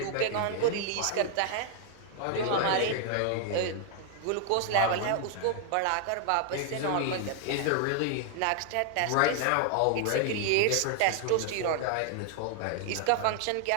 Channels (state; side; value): different; both; correlation 0.00